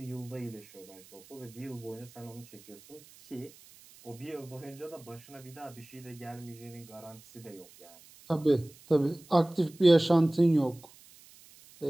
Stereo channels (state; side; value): noise; right; hiss, 23 dB below the sound